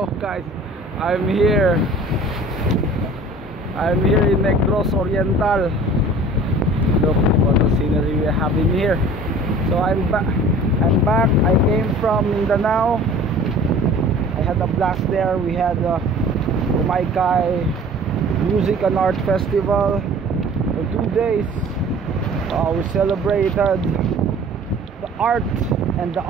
guys. I'm here. I'm here in Negros Oriental. Look what the scenery we have in here. So I'm back. I came from Mindanao. I had a blast there. We had a Kumaykay Music and Art Festival for 2 days. We celebrated the art and the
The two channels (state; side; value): normal; both; correlation 0.46